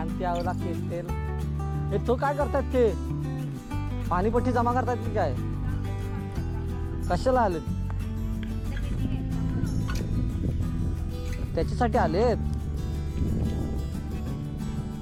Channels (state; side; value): identical; both; correlation 1.00